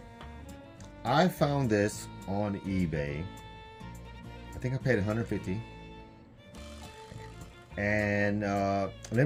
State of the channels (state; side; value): identical; both; correlation 1.00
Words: I found this on eBay. I think I paid $150. And